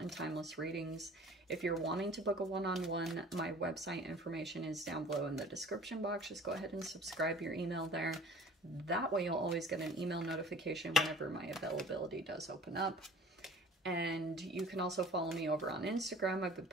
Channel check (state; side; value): normal; both; correlation 0.46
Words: timeless readings. If you're wanting to book a one-on-one, my website information is down below in the description box. Just go ahead and subscribe your email there. That way you'll always get an email notification whenever my availability does open up. And you can also follow me over on Instagram. I've been